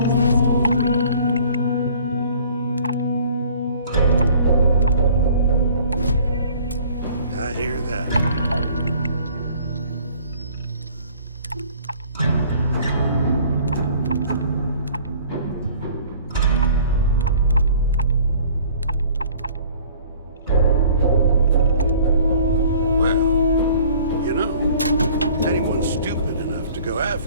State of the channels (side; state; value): both; inverted; correlation -0.52